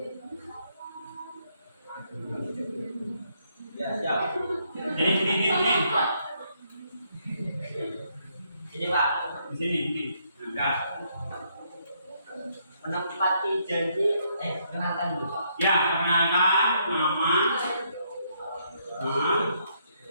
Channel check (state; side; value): inverted; both; correlation -0.73